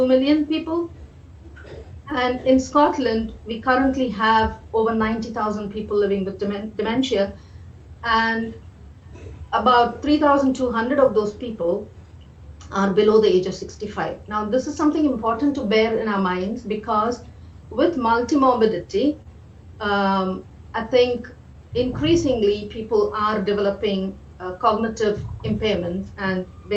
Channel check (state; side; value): identical; both; correlation 1.00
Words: million people. And in Scotland, we currently have over 90,000 people living with dementia, and about 3,200 of those people are below the age of 65. Now, this is something important to bear in our minds, because with multimorbidity, I think increasingly people are developing cognitive impairments and